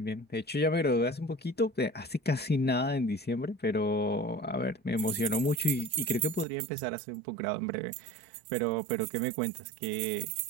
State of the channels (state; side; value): drops out; left; at 6.5 s